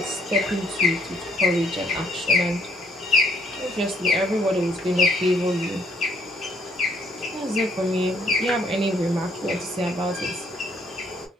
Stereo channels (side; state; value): both; normal; correlation 0.68